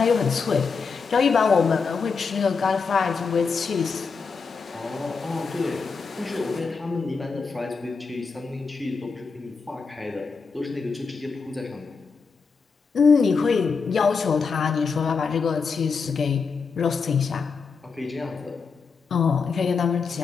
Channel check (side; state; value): right; quieter; 5.1 dB